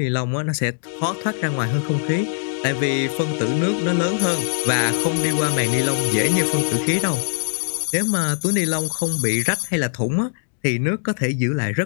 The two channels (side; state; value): right; silent; digital silence